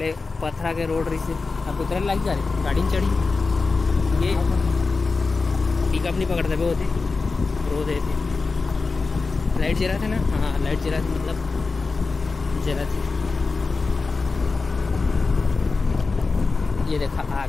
पथरा के रोड रही से अब उतरे लग जा रही गाड़ी में चढ़ी। ये पिकअप नहीं पकड़ते वो होते रोड थे। लाइट जरा थे ना, हाँ लाइट जरा थी, मतलब जरा थी। ये देखा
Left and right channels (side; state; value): right; quieter; 4.1 dB